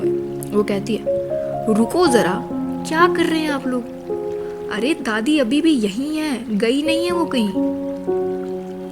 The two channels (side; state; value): both; identical; correlation 1.00